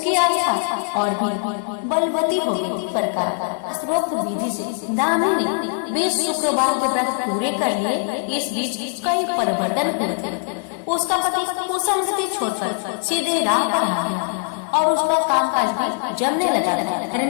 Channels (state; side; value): silent; right; 59 dB below the other